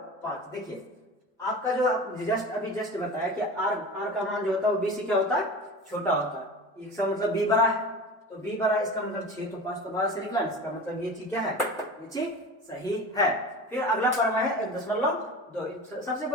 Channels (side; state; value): both; normal; correlation 0.33